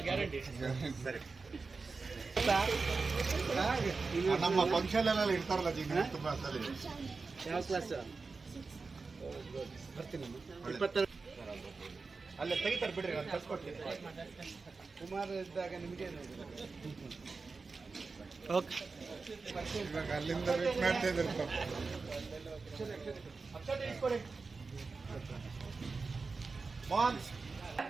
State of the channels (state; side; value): quieter; left; 4.2 dB